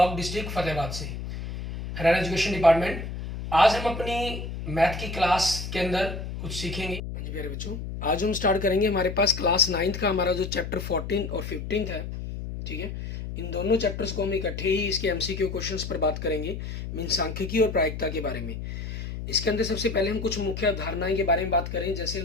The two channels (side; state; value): left; noise; hum, 7 dB below the sound